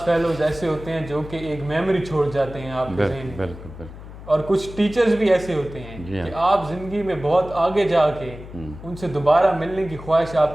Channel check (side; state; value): left; noise; hum, 14 dB below the sound